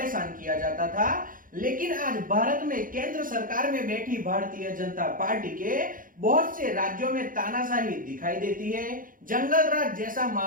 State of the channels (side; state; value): left; late; 0.40 ms